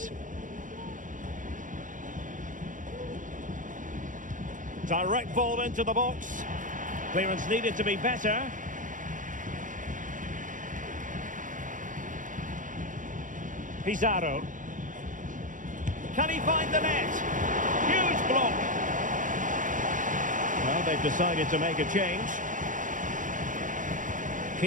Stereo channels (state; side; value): late; left; 0.38 ms